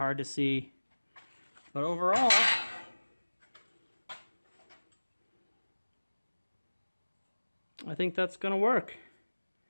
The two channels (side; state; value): both; inverted; correlation -1.00